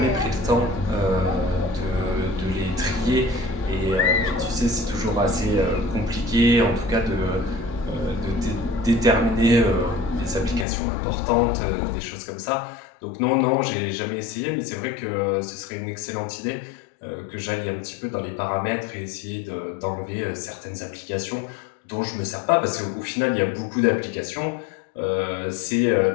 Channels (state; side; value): drops out; right; at 10.7 s